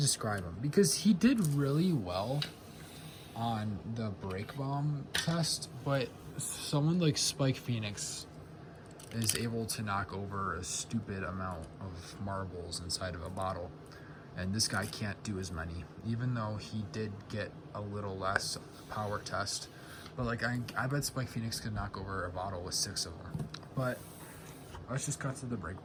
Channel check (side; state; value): both; identical; correlation 1.00